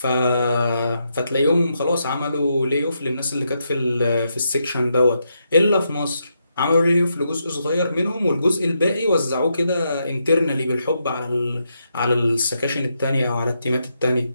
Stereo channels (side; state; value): both; inverted; correlation -0.81